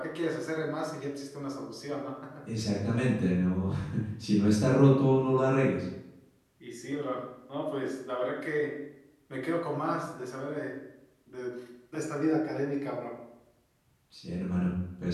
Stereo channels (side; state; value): both; identical; correlation 1.00